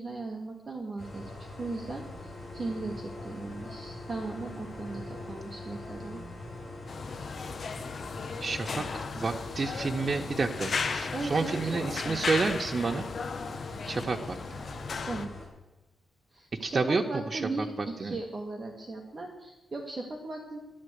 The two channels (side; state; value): both; normal; correlation 0.88